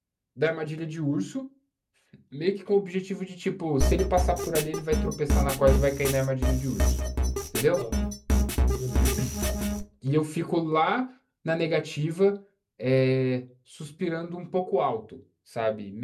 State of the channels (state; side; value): identical; both; correlation 1.00